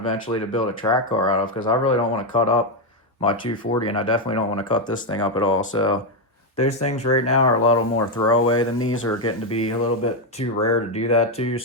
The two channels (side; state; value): both; normal; correlation 0.05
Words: to build a track car out of, because I really don't want to cut up my 240, and I definitely don't want to cut this thing up at all. So those things right now are a little more throwaway than these, are getting to be a little bit too rare to do that too.